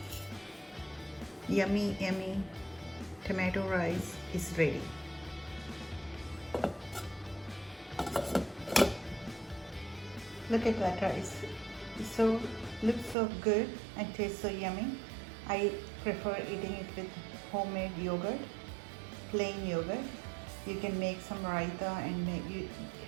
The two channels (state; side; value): drops out; left; at 13.2 s